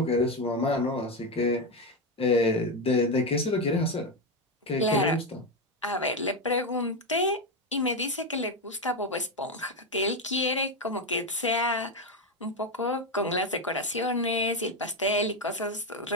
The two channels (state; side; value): normal; both; correlation 0.11